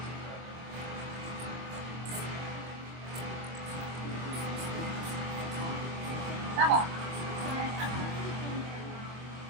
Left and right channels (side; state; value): left; late; 24 ms